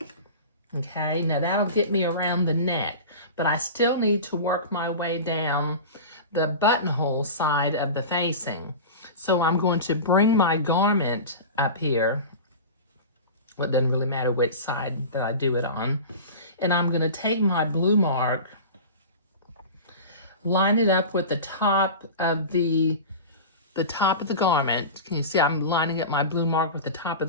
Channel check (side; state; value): both; inverted; correlation -0.31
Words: Okay, now that'll get me around the neck, but I still need to work my way down the buttonhole side of the facing. So I'm going to bring my garment up here. Well, it doesn't really matter which side that I do it on. And I'm going to take my blue mark, line it up with the top of the garment. Can you see I'm lining up my blue mark with the top of